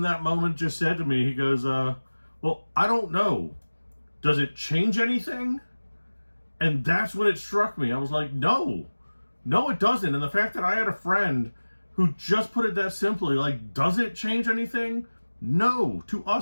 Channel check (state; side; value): inverted; both; correlation -1.00